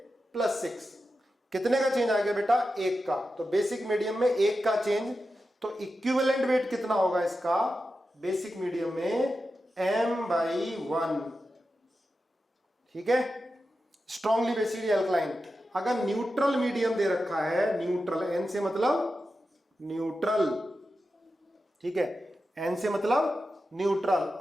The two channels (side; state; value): both; normal; correlation 0.91